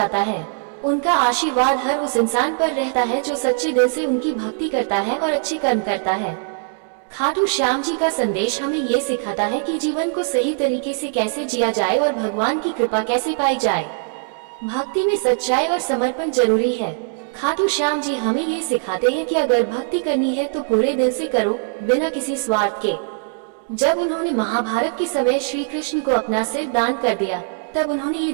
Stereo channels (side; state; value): left; silent; 58 dB below the other